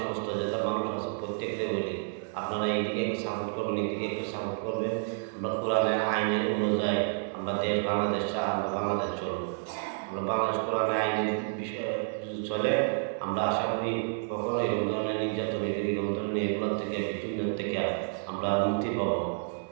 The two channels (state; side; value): silent; left; digital silence